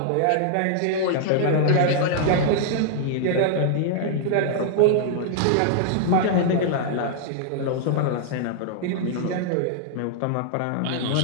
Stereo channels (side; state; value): both; different; correlation -0.01